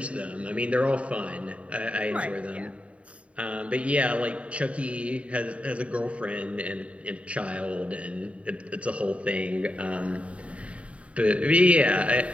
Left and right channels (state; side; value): late; left; 0.064 ms